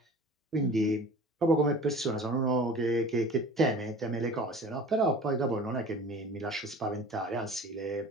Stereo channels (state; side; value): normal; both; correlation 0.42